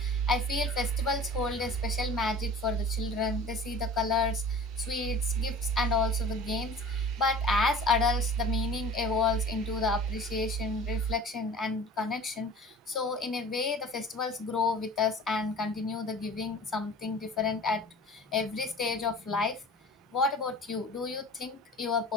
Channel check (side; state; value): both; normal; correlation 0.42